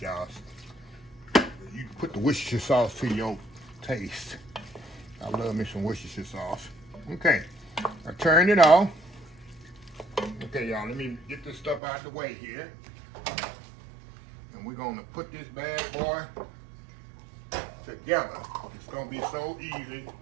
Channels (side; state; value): left; drops out; at 11.8 s